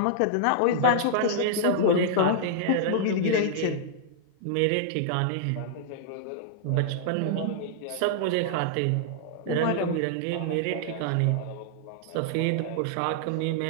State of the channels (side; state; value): both; different; correlation -0.01